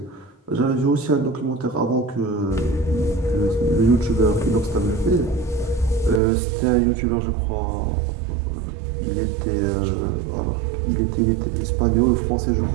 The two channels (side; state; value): left; drops out; at 6.2 s